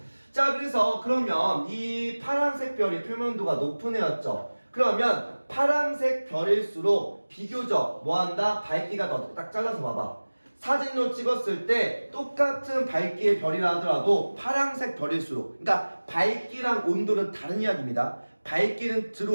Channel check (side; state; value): both; inverted; correlation -1.00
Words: 자 그래서 그러면 이 파란색 별이 표면도가 높은 애였죠. 그러면 파란색 별일수록 비교적 뭐한다? 밝기가 더 딱 잘라서 봐봐. 사진으로 찍었을 때 똑같은 밝기의 별이라 하더라도 파란색 별일수록 그러니까 밝기랑 온도는 다른 이야기입니다. 밝기는